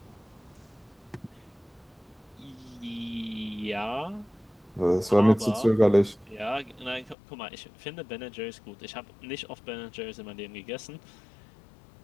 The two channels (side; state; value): right; drops out; at 7.2 s